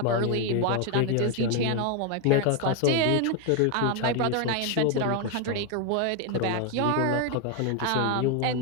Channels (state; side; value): different; both; correlation 0.01